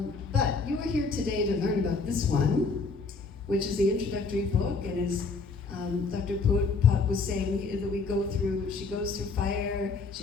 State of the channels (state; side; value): quieter; right; 4.4 dB